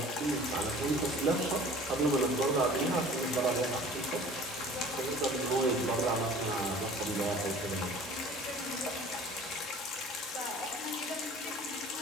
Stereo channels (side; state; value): both; normal; correlation 0.46